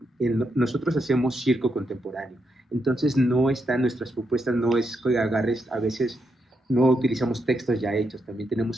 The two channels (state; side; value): normal; both; correlation 0.81